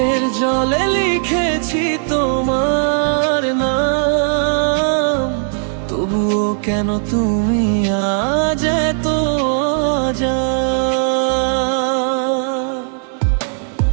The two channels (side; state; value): left; silent; 56 dB below the other